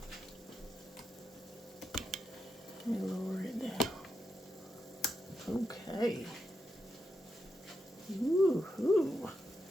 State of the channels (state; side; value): normal; both; correlation 0.85